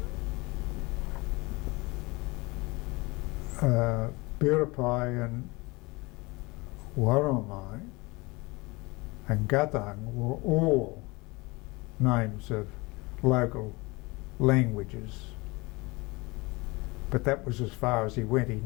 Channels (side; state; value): right; quieter; 24.6 dB